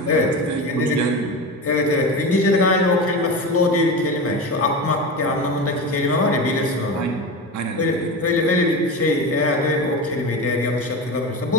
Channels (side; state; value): both; normal; correlation 0.25